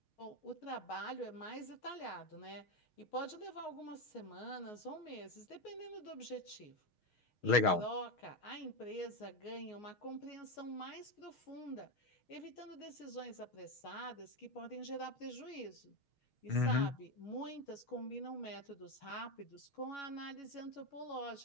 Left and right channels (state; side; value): late; right; 6.4 ms